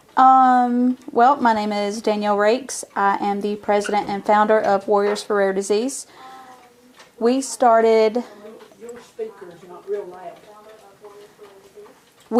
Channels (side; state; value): both; identical; correlation 1.00